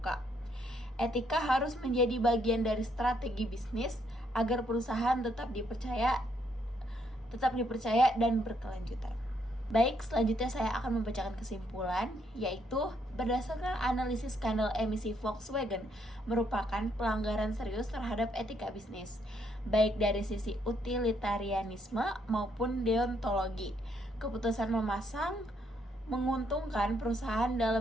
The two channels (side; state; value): both; normal; correlation 0.72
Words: Etika harus menjadi bagian dari strategi bisnis agar perusahaan tetap dipercaya dan berkelanjutan. Baik, selanjutnya saya akan membacakan kesimpulan, yaitu berdasarkan analisis skandal emisi Volkswagen merupakan pelanggaran serius terhadap etika bisnis, baik dari sisi utilitarianisme maupun deontologi. Keputusan memasang menguntungkan perusahaan